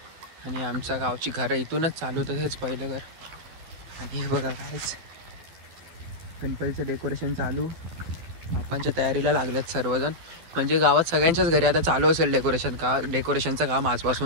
आणि आमच्या गावची घरं इथूनच चालू होतं, हेच पहिलं घर. आणि हे बघा कायच गणपतीचं डेकोरेशन चालू, बाप्पांच्या तयारीला लागल्यात सर्वजण. म्हणजे गावात सगळ्यांच्याच घरी आता चालू असेल डेकोरेशनचं काम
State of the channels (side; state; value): left; late; 12 ms